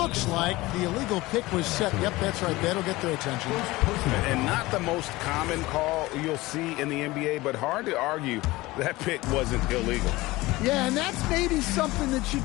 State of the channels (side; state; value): right; quieter; 19.9 dB